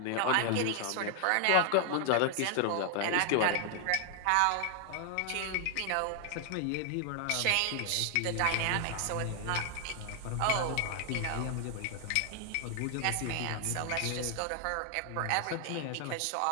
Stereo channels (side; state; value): both; different; correlation 0.00